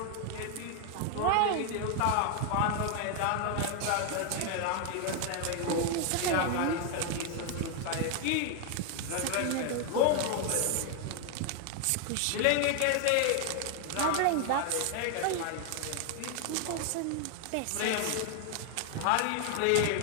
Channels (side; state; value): both; different; correlation 0.01